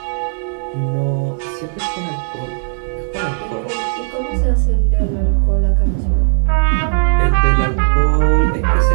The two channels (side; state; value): left; silent; 64 dB below the other